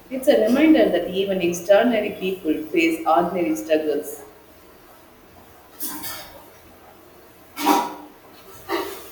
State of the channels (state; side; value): identical; both; correlation 1.00